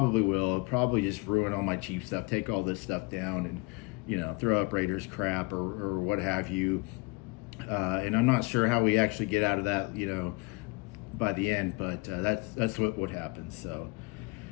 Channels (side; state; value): right; quieter; 26.4 dB